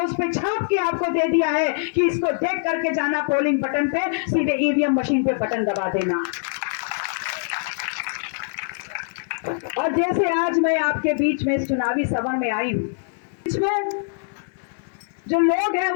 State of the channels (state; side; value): silent; right; 63 dB below the other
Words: उस पे छाप के आपको दे दिया है कि इसको देख करके जाना पोलिंग बटन पे, सीधे ईवीएम मशीन पे बटन दबा देना। और जैसे आज मैं आपके बीच में इस चुनावी सभा में आई हूं, इसमें जो लोग हैं